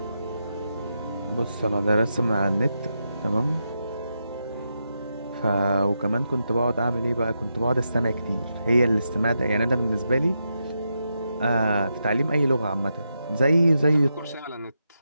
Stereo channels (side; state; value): both; inverted; correlation -0.85